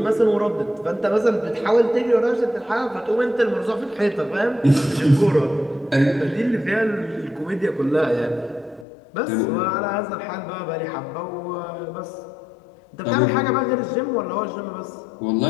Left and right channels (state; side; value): drops out; right; at 8.8 s